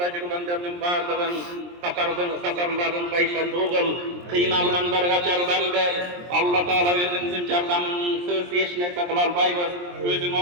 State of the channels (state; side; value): late; left; 23 ms